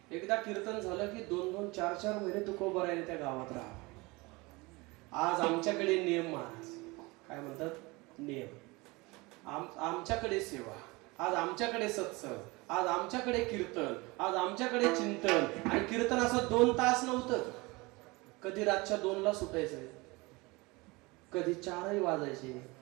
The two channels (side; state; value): left; quieter; 24.2 dB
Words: एकदा कीर्तन झालं की 2-2, 4-4 महिने तुकोबरायाने त्या गावात राहा. आज आमच्याकडे नियम महाराज काय म्हणतात, नियम. आमच्याकडे सेवा, आज आमच्याकडे सत्संग, आज आमच्याकडे कीर्तन, आज आमच्याकडे चिंतन. आणि कीर्तन असं 2 तास नव्हतं. कधी रातच्या 2ला सुटायचं, कधी 4ही वाजायचे,